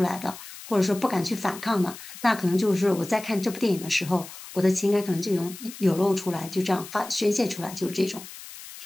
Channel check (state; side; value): noise; left; hiss, 14 dB below the sound